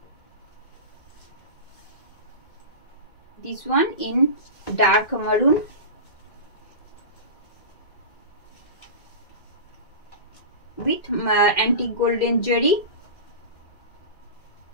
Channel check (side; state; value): right; late; 2.0 ms